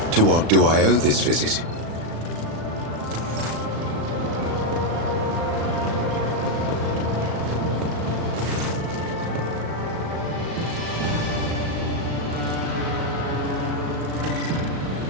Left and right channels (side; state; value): left; late; 36 ms